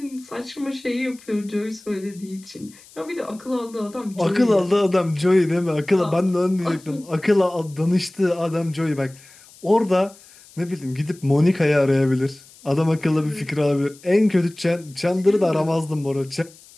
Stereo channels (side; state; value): left; noise; hiss, 24 dB below the sound